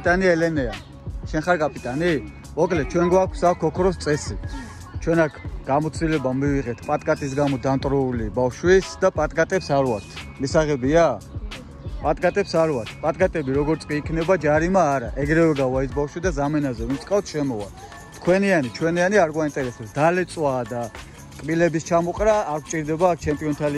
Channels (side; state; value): both; identical; correlation 1.00